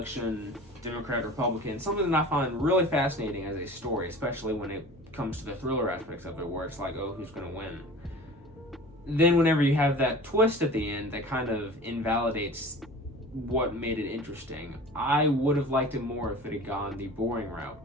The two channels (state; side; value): normal; both; correlation 0.40